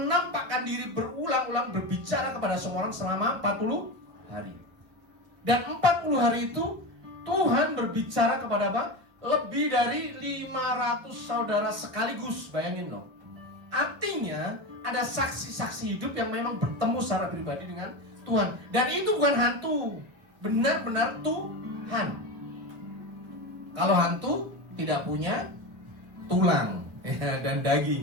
diri berulang-ulang berbicara kepada semua orang selama 40 hari. Dan 40 hari itu Tuhan berbicara kepada apa? Lebih dari 500 saudara sekaligus. Bayangin loh. Artinya ada saksi-saksi hidup yang memang bertemu secara pribadi dengan Tuhan. Dan itu bukan hantu, benar-benar Tuhan. Kalau hantu tidak punya tulang ya, dan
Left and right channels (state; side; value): late; left; 1.4 ms